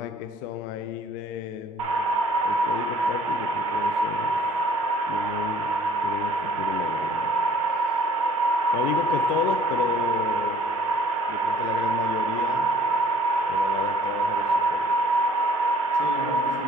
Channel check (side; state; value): both; normal; correlation 0.55